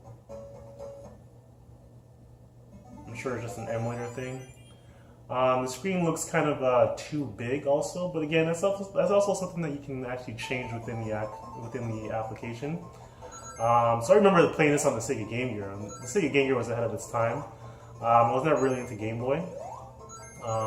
I'm sure it's just an emulator thing. The screen looks kind of too big, also. But again, that's also something that you can actually change within the application. So I remember playing this on the Sega Game Gear. The Sega Game Gear was ahead of its time. I was never really into Game Boy.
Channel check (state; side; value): identical; both; correlation 1.00